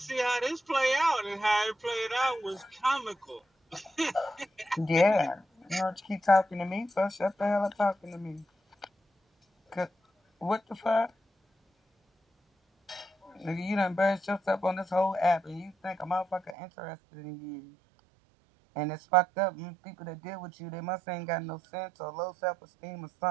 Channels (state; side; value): drops out; left; at 16.6 s